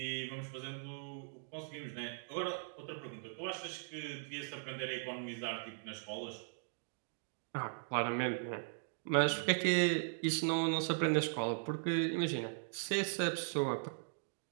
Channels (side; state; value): left; silent; digital silence